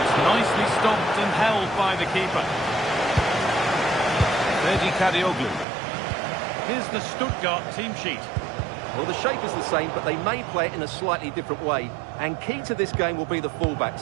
it's nicely stopped and held by the keeper. Ferdi Kadioglu. Here's the Stuttgart team sheet. Well, the shape is the same, but they may play it in a slightly different way. And key to this game will be the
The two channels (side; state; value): left; drops out; at 5.7 s